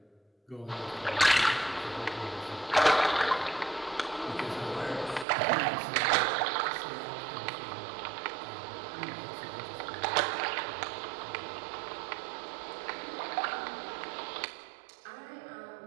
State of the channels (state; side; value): drops out; left; at 5.2 s